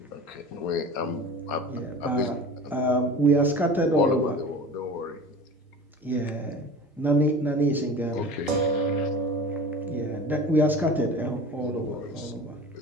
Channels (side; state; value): both; normal; correlation 0.37